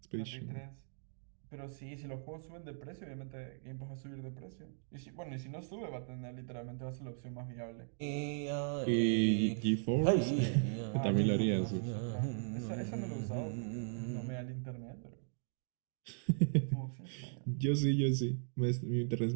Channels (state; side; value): silent; left; digital silence